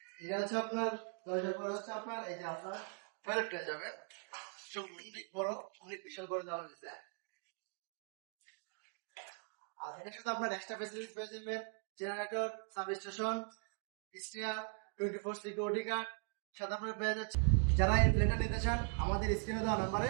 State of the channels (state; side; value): quieter; left; 39.7 dB